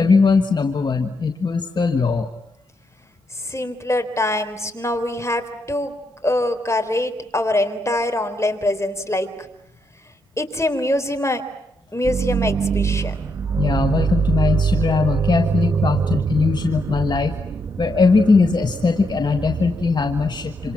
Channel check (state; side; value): normal; both; correlation 0.79